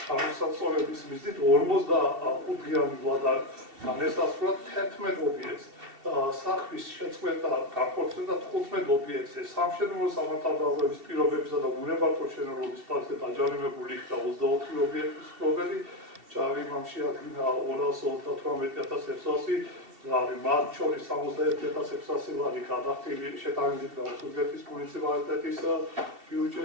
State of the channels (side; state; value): left; late; 2.7 ms